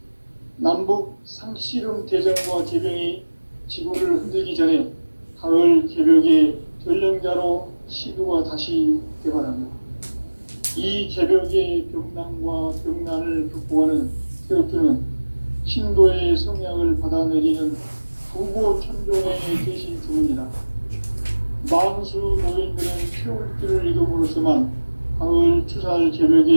남북 상씨름 대전과 개병이 지구를 흔들기 전에 가을 개벽의 전령자로 시도가 다시 개발한다. 이 개벽의 병난과 병난을 극복하는 태극주는 신도의 성향을 받아내리는 부고 천종의 대신 주문이다. 만수 노인들은 태울주를 이름으로서만 가을 추살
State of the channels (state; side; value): inverted; both; correlation -1.00